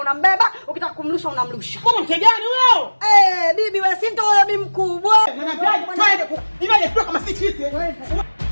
unambeba, ukitaka kumrusha unamrusha. Kama mke gani huyo? Bibi wewe si ndio wewe bibi mkubwa. Twende kama sisi.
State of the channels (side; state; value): both; inverted; correlation -1.00